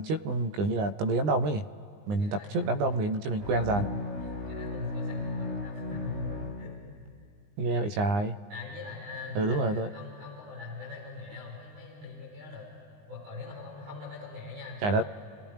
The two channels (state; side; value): late; left; 20 ms